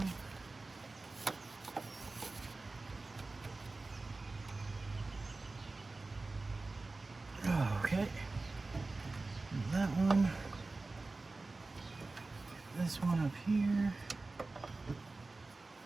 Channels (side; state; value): left; quieter; 3.4 dB